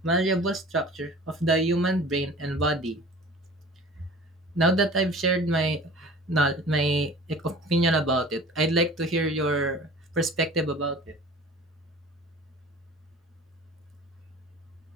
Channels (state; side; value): normal; both; correlation 0.43